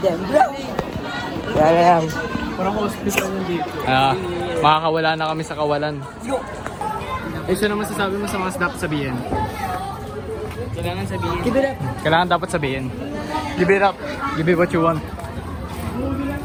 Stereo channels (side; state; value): both; identical; correlation 1.00